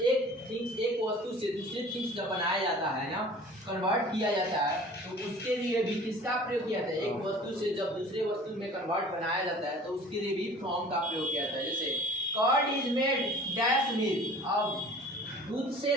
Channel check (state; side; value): normal; both; correlation 0.46